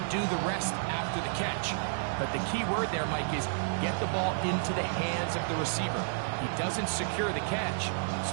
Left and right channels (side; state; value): left; silent; digital silence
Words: do the rest after the catch. But the key word there, Mike, is get the ball into the hands of the receiver. He doesn't secure the catch,